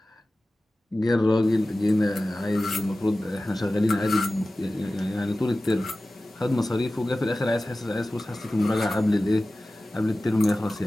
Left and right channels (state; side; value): normal; both; correlation 0.96